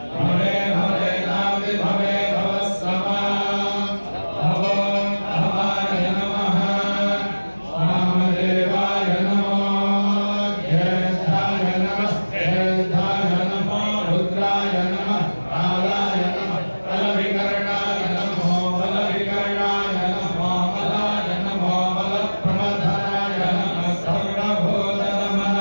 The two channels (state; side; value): inverted; both; correlation -1.00